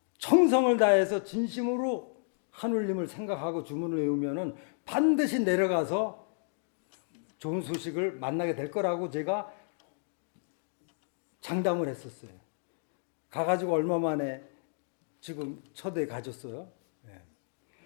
정성을 다해서 진심으로 하늘님을 생각하고 주문을 외우면은 반드시 내려가서 좋은 소식을 만나게 될 거라고 제가 장담을 했었어요. 가가지고 얼마 만에 지금 초대 가졌어요.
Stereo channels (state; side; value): silent; right; digital silence